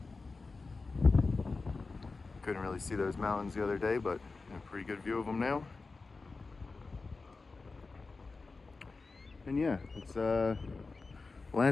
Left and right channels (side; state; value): right; quieter; 3.9 dB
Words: Couldn't really see those mountains the other day, but a pretty good view of them now. And yeah, it's